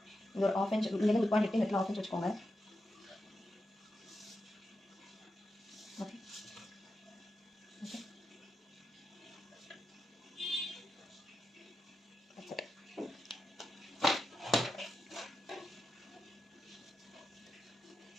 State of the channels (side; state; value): both; normal; correlation 0.88